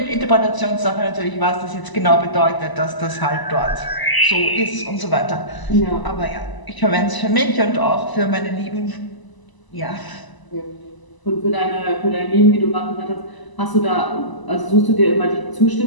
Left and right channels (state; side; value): late; right; 1.0 ms